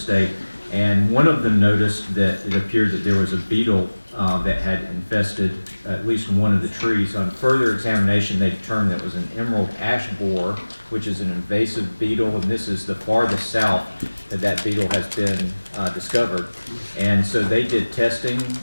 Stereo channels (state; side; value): inverted; both; correlation -1.00